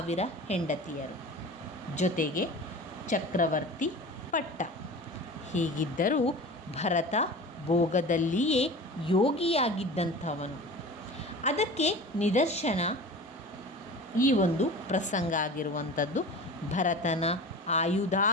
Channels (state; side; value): normal; both; correlation 0.36